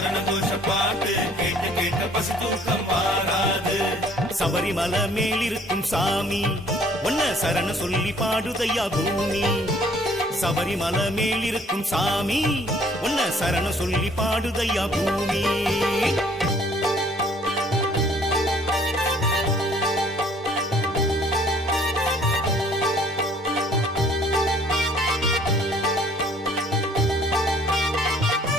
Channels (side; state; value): both; normal; correlation 0.58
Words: கோஷ பாட்டு கேட்க கேட்க பசி தூக்கம் மாறாது. சபரிமலை மேல் இருக்கும் சாமி, ஒன்ன சரண சொல்லி பாடுதையா பூமி. சபரிமலை மேல் இருக்கும் சாமி, ஒன்ன சரண சொல்லி பாடுதையா பூமி.